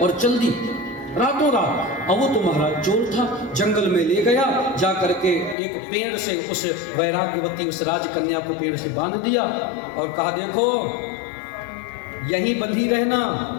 चल दी रातों रात। अब वो तो महाराज चोर था, जंगल में ले गया, जा करके एक पेड़ से उस वैराग्यवती उस राजकन्या को पेड़ से बांध दिया और कहा देखो यहीं बंधी रहना,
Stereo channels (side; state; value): right; drops out; at 5.6 s